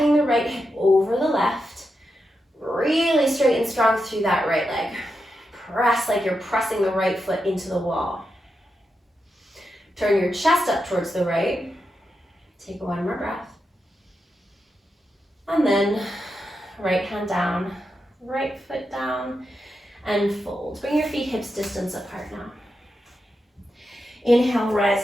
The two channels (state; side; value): normal; both; correlation 0.87